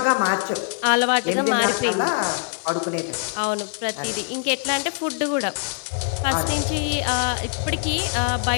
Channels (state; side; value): silent; right; digital silence